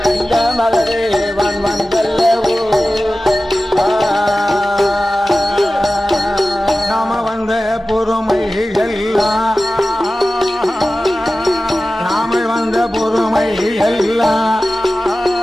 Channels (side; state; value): both; normal; correlation 0.95